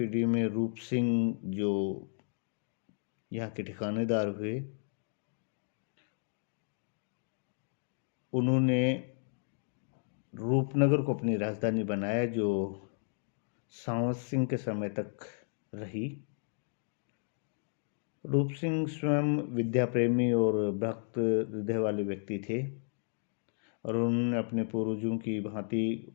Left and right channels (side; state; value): right; silent; digital silence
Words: में रूप सिंह, जो यहाँ के ठिकानेदार हुए, उन्होंने रूपनगर को अपनी राजधानी बनाया, जो सांवत सिंह के समय तक रही। रूप सिंह स्वयं विद्या प्रेमी और भक्त हृदय वाले व्यक्ति थे और उन्होंने अपने पूर्वजों की भांति